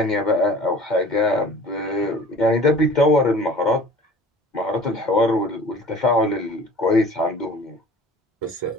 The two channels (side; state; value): both; normal; correlation 0.45